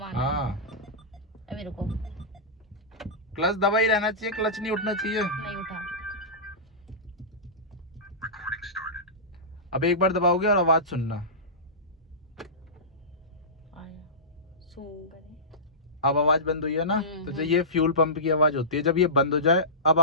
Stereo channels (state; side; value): normal; both; correlation -0.19